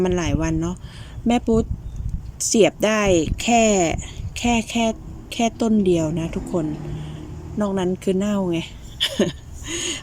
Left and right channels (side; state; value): both; identical; correlation 1.00